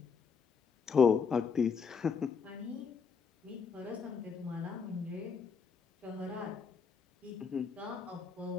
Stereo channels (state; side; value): quieter; right; 5.9 dB